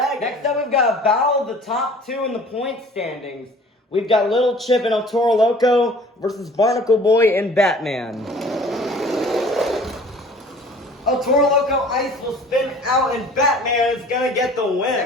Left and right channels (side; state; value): both; normal; correlation 0.48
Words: Next up we've got a battle of the top two in the point standings. We've got Little Chip and El Toro Loco versus Barnacle Boy and Batman. El Toro Loco Ice will spin out and Batman is gonna get the win.